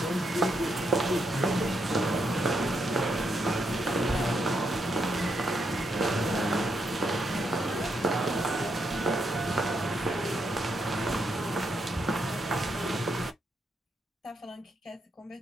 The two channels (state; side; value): normal; both; correlation 0.80